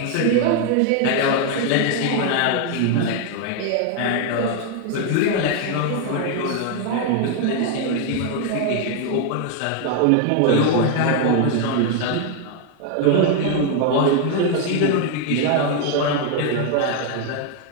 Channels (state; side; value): different; both; correlation 0.00